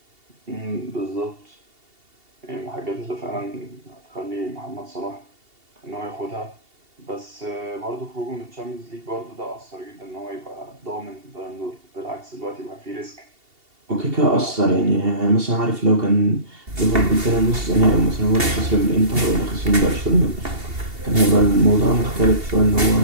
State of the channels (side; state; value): left; late; 2.8 ms